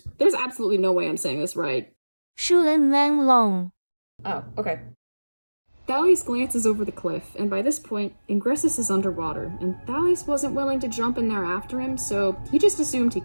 absolutely no way I'm saying this right. XunMengLong. Oh, okay. Thalleous glances over the cliff, and by this point, Ingressus is underwater, and Thalleous wasn't willing to jump in there after him, so he just assumed he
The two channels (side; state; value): both; inverted; correlation -1.00